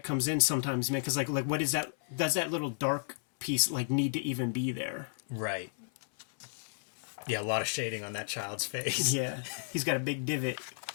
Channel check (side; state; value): right; silent; 56 dB below the other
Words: comes in sometimes, man, because like what is that? Does that little dark piece like need to even be there? Right. Yeah, a lot of shading on that child's face. Yeah, he's got a big divot.